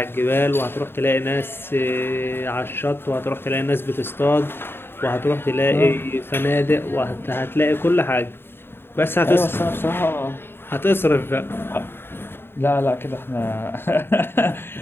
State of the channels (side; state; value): right; late; 0.11 ms